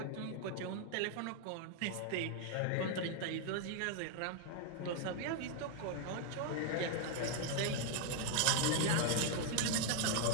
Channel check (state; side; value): different; both; correlation 0.00